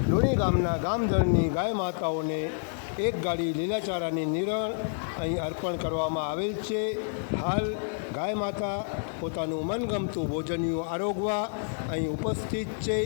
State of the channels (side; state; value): right; silent; 59 dB below the other